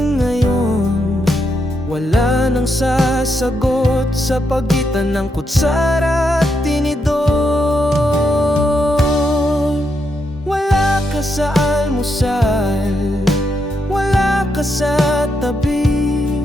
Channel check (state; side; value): normal; both; correlation 0.81